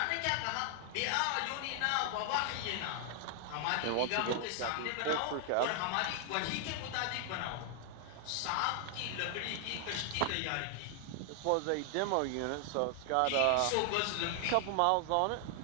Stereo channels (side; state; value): both; different; correlation 0.00